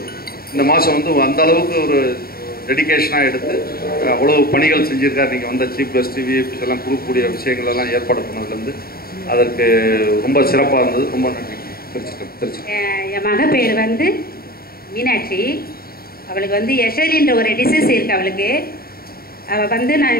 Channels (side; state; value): right; late; 0.44 ms